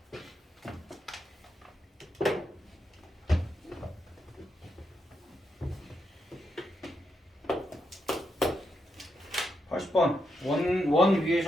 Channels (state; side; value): normal; both; correlation 0.82